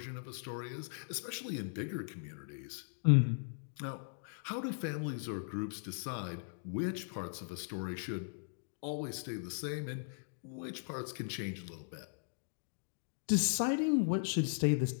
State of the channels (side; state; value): right; silent; digital silence